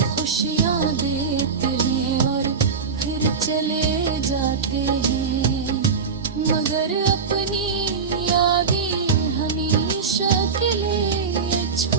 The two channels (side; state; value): left; quieter; 5.5 dB